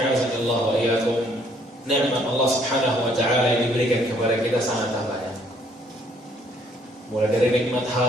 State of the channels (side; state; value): both; normal; correlation 0.64